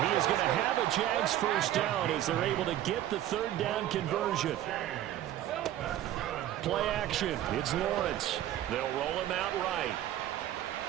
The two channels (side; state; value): left; quieter; 12.6 dB